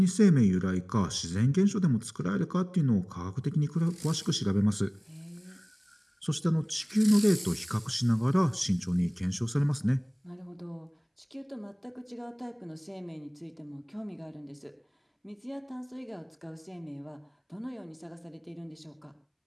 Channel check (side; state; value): both; identical; correlation 1.00